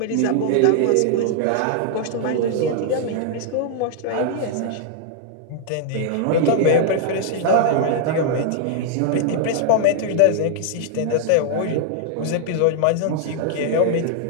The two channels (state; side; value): different; both; correlation -0.01